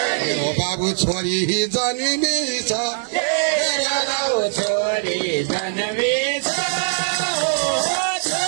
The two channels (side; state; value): left; silent; 65 dB below the other